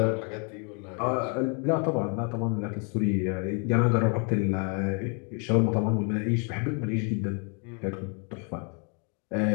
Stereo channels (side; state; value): right; quieter; 37.2 dB